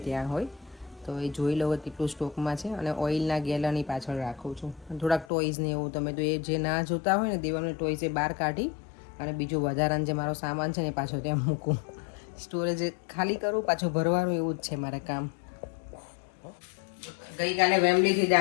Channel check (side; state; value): right; drops out; at 5.2 s